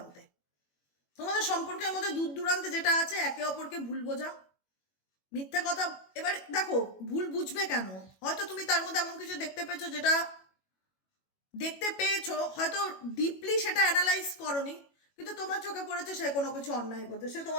তোমাদের সম্পর্কের মধ্যে দূর দূরান্তে যেটা আছে, একে অপরকে ভুল বোঝা, মিথ্যা কথা। এবার দেখো ভুল বুঝবে কেন? হয়তো তুমি তার মধ্যে এমন কিছু দেখতে পেয়েছো, হয়তো ডিপলি সেটা অ্যানালাইজ করনি, কিন্তু তোমার চোখে পড়েছে সে কোনো কিছু অন্যায় করছে, সে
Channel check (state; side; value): late; right; 21 ms